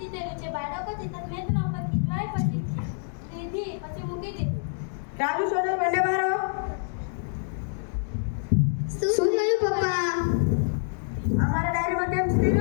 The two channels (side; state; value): right; silent; digital silence